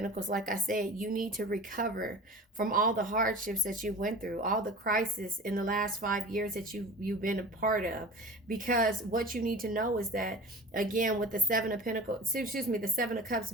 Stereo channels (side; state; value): both; normal; correlation 0.36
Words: like I said, you need to recover from all the hardships that you went through, all the crisis in the last 5 years that you've been a part of. Because what you need to know is that, again, with the Seven of Pentacles, the Seven of Cups